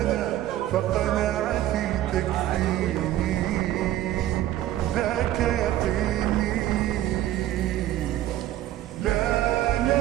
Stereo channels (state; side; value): quieter; left; 13.6 dB